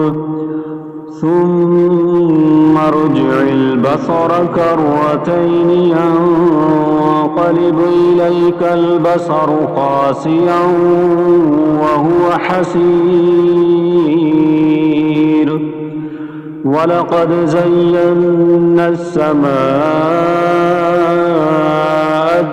ثم ارجع البصر كرتين ينقلب إليك البصر خاسئا وهو حسير. ولقد زينا السماء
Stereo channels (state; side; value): identical; both; correlation 1.00